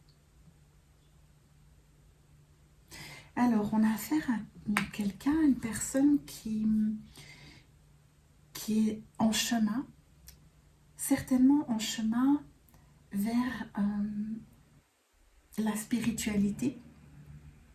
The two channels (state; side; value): identical; both; correlation 1.00